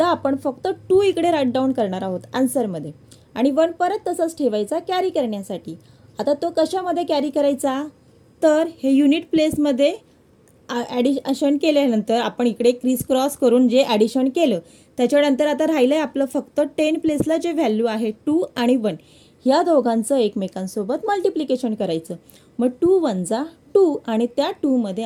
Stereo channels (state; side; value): identical; both; correlation 1.00